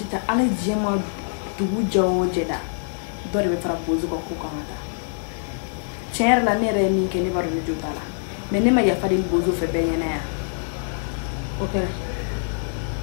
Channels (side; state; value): right; silent; digital silence